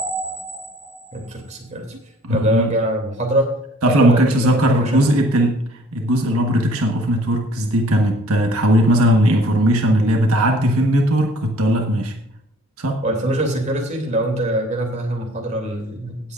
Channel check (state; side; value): normal; both; correlation 0.55